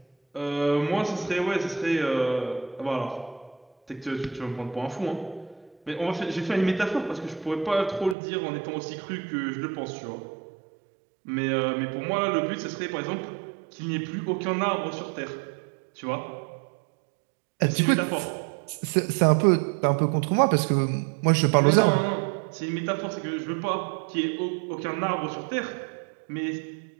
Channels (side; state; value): left; drops out; at 8.2 s